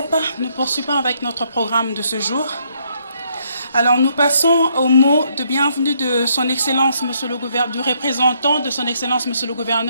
Nous poursuivons avec notre programme de ce jour. Alors nous passons au mot de bienvenue de son Excellence, Monsieur le gouverneur, du représentant de son Excellence, Monsieur le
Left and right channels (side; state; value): both; inverted; correlation -0.72